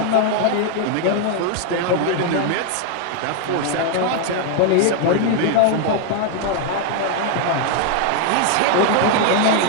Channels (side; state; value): both; different; correlation 0.00